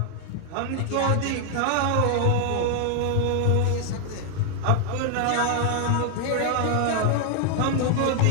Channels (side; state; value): both; different; correlation 0.00